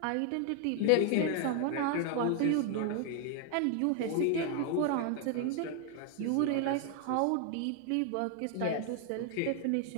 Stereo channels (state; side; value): different; both; correlation 0.00